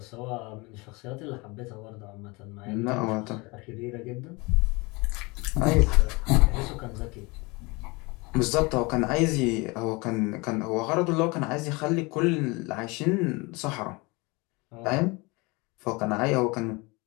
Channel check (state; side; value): quieter; right; 26.0 dB